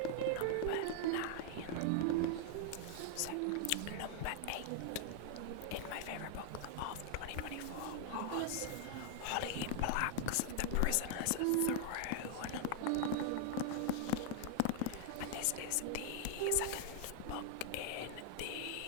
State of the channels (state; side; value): different; both; correlation 0.00